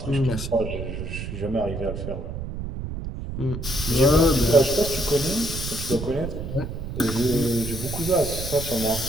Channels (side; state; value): right; noise; rumble, 6 dB below the sound